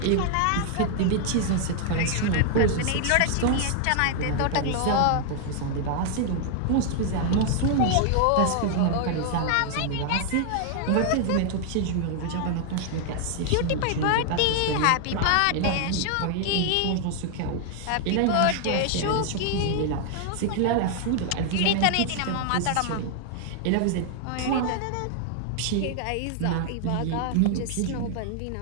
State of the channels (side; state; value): both; different; correlation 0.00